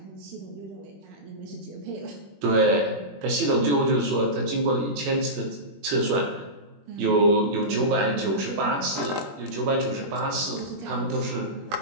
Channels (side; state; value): left; late; 21 ms